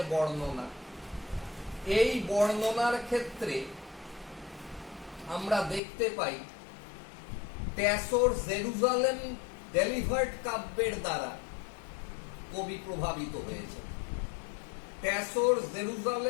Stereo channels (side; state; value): right; drops out; at 5.8 s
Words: বর্ণনা, এই বর্ণনার ক্ষেত্রে আমরা দেখতে পাই ট্যাসোর জেরুজালেম ডেলিভার্ড কাব্যের দ্বারা কবি প্রভাবিত হয়েছে। ট্যাসোর